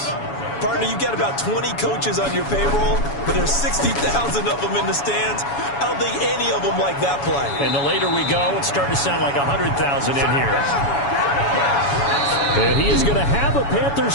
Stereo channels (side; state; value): right; late; 7.1 ms